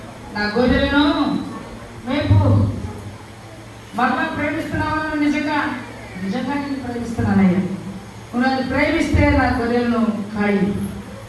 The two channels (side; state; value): both; identical; correlation 1.00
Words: నా గొర్రెలను మేపు. మరలా ప్రేమిస్తున్నావా? నిజంగా నిజంగా నేను ప్రేమిస్తున్నానయ్యా. నువ్వు నన్ను ప్రేమిస్తే నా గొర్రెలను కాయి.